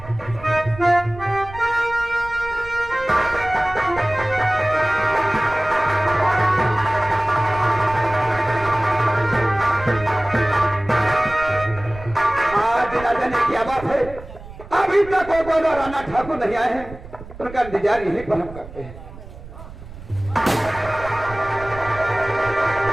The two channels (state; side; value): noise; right; rumble, 15 dB below the sound